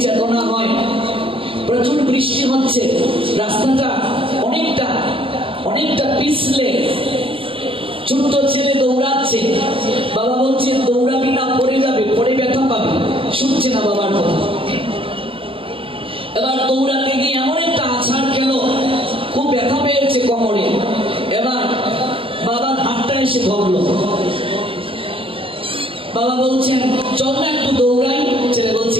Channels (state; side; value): late; left; 0.26 ms